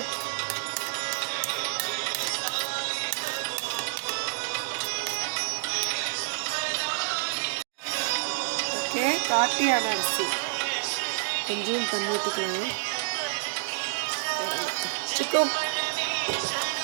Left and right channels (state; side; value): silent; left; digital silence